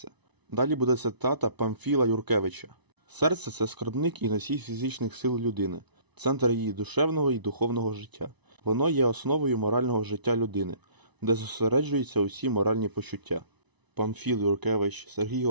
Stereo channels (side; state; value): left; late; 1.0 ms